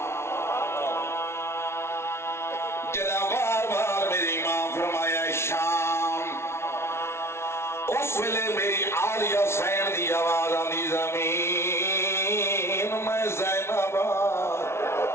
جدا بار بار میرے امام فرمایا شام اس ویلے میری عالیہ سین دی آواز آندی زمین میں زینب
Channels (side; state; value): right; late; 0.12 ms